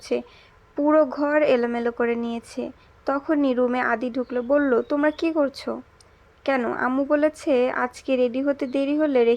পুরো ঘর এলোমেলো করে নিয়েছে। তখনই রুমে আদি ঢুকলো, বলল, তোমরা কি করছো? কেন, আম্মু বলেছে আজকে রেডি হতে দেরি হলে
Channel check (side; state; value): both; identical; correlation 1.00